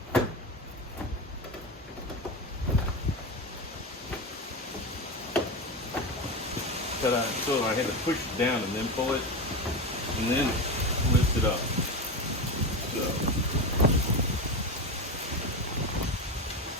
so I had to push it down and then pull it, and then lift it up. So.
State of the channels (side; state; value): both; normal; correlation 0.19